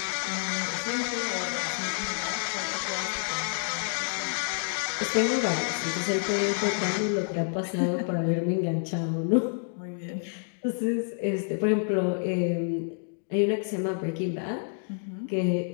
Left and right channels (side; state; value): right; silent; digital silence